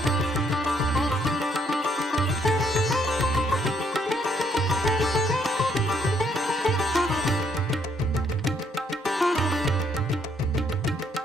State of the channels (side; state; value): both; normal; correlation 0.70